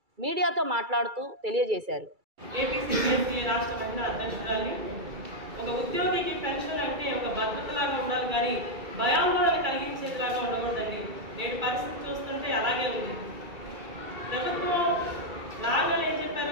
మీడియాతో మాట్లాడుతూ తెలియజేశారు. ఏపీసీపీఎస్సీ రాష్ట్ర మహిళా అధ్యక్షురాలి. ఒక ఉద్యోగికి పెన్షన్ అంటే ఒక భద్రతలాగా ఉండాలి కానీ భయాందోళన కలిగించేదిలాగా ఉండకూడదండి. నేటి పరిస్థితి చూస్తుంటే అలాగే ఉంది. ప్రభుత్వం రాగానే ఏం చెప్పారు,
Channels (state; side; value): late; left; 2.3 ms